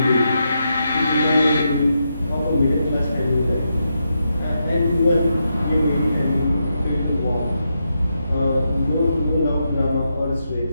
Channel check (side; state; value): both; inverted; correlation -0.84